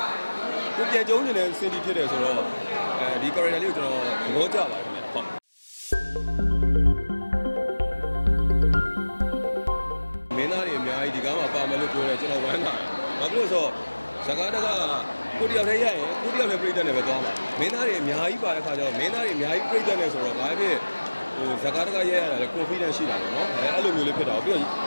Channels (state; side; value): inverted; both; correlation -1.00